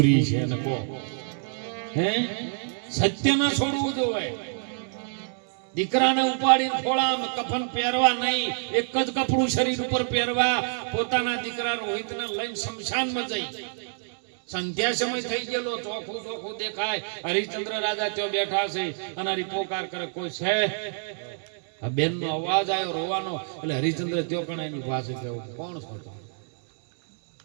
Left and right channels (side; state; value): left; silent; digital silence